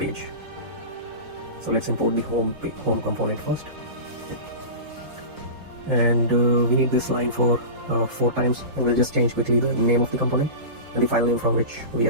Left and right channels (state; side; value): late; left; 4.5 ms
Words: So let's import the home component first, and we need this line for 4 times, and we'll just change quickly the name of the component and the file name from which we